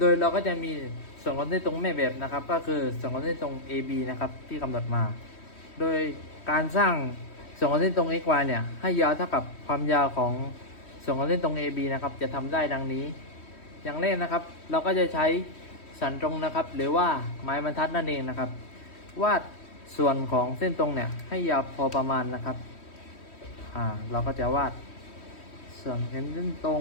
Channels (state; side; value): late; right; 3.1 ms